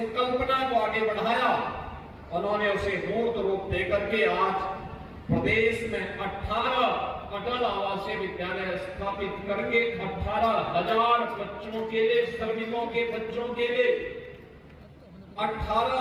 को आगे बढ़ाया उन्होंने उसे मूर्त रूप देकर के आज प्रदेश में 18 अटल आवासीय विद्यालय स्थापित करके 18,000 बच्चों के लिए, श्रमिकों के बच्चों के लिए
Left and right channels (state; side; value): identical; both; correlation 1.00